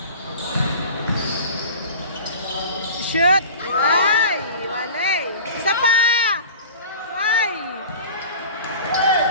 Shoot! Ay! Wale! Isa pa! Ay!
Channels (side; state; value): both; inverted; correlation -0.39